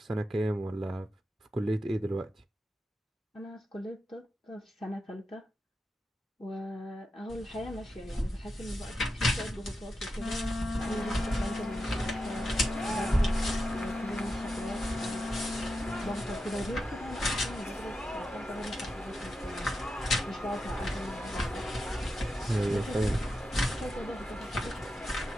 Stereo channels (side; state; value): both; normal; correlation 0.89